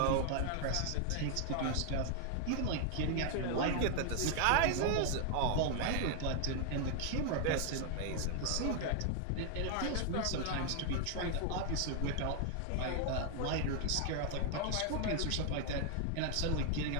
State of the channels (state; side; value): different; both; correlation 0.00